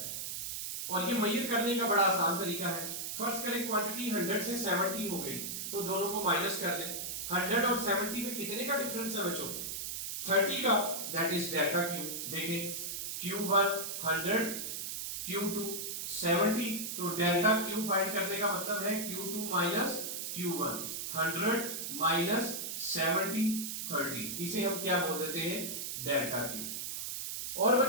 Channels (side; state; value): right; noise; hiss, 4 dB below the sound